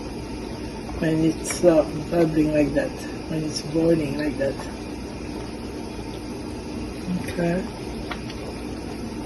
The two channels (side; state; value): both; identical; correlation 1.00